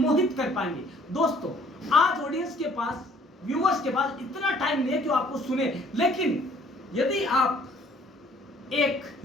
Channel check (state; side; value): normal; both; correlation 0.59